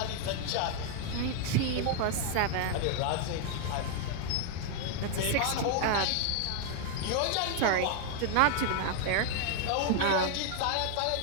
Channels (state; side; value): different; both; correlation 0.01